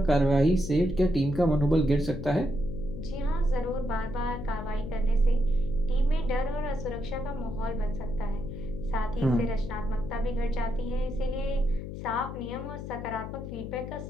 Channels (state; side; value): noise; left; hum, 8 dB below the sound